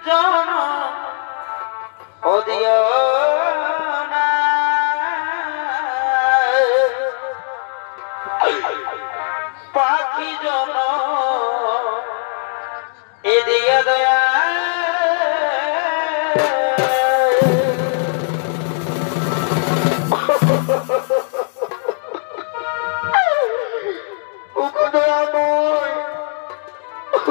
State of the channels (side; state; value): right; silent; digital silence